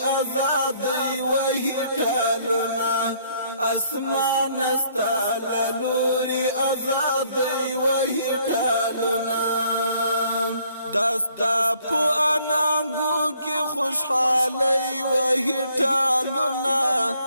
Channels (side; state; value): both; inverted; correlation -0.65